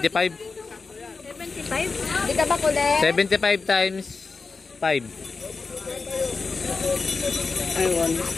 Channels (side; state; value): right; quieter; 4.4 dB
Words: 75? Di ka ba kulit? 75 times 5.